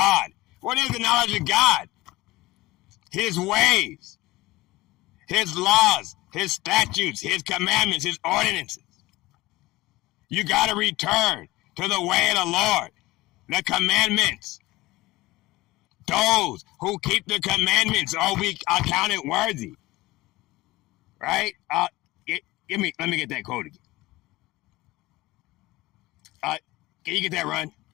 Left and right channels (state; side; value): quieter; right; 19.3 dB